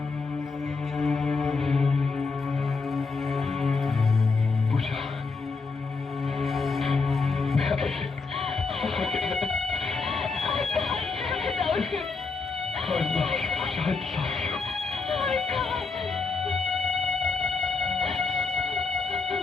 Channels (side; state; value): right; quieter; 4.3 dB